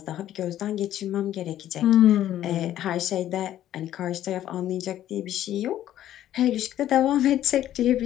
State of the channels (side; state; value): right; quieter; 12.3 dB